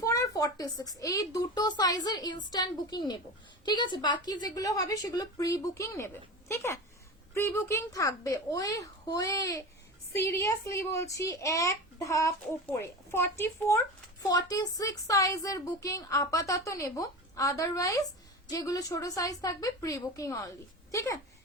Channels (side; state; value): both; normal; correlation 0.28